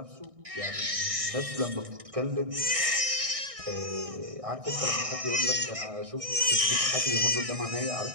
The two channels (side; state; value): left; late; 1.6 ms